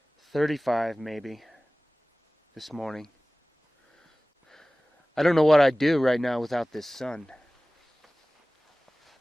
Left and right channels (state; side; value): normal; both; correlation 0.98